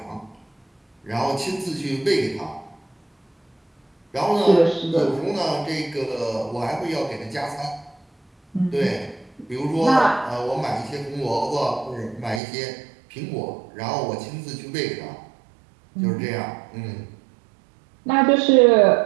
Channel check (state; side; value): drops out; left; at 12.4 s